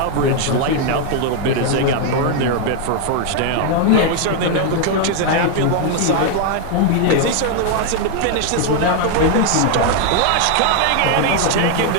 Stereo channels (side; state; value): both; different; correlation 0.00